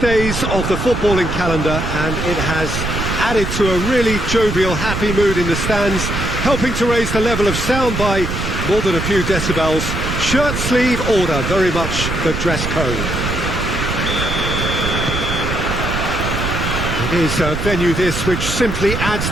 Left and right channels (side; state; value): right; noise; rumble, 4 dB below the sound